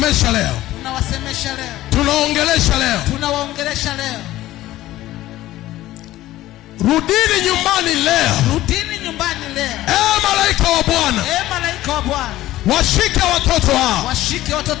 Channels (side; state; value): right; quieter; 15.5 dB